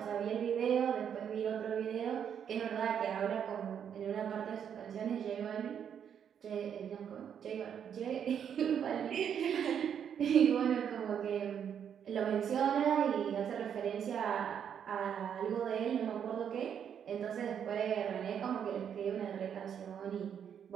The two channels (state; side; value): quieter; left; 8.3 dB